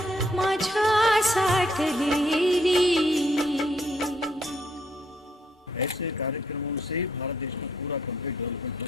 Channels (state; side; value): normal; both; correlation 0.71